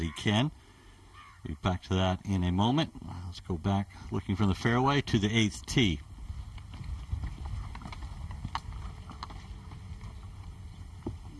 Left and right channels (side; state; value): both; identical; correlation 1.00